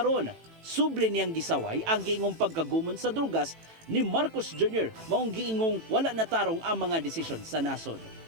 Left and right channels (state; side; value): late; left; 18 ms